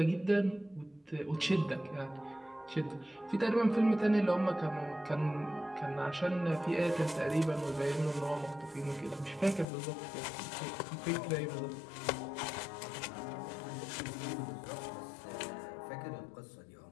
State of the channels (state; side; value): drops out; right; at 9.7 s